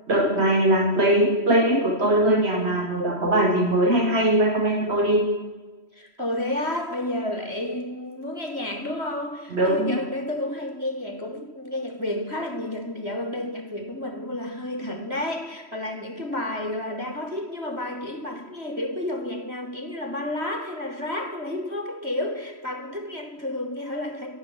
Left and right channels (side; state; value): left; late; 3.1 ms